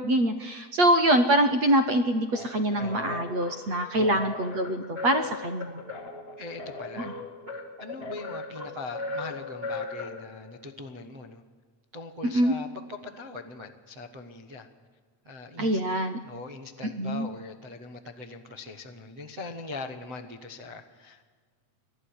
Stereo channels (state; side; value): late; left; 8.4 ms